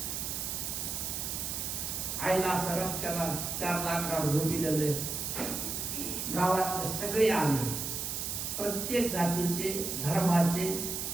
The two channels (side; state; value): right; noise; hiss, 3 dB below the sound